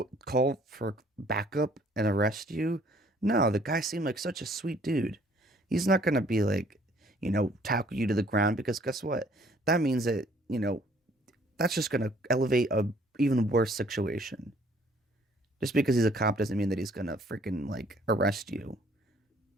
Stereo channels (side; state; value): both; normal; correlation 0.60